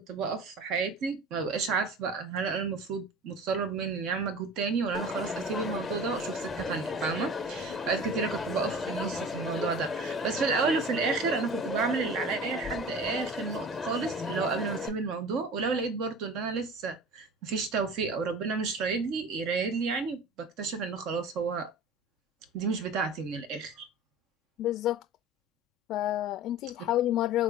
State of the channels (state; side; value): normal; both; correlation 0.39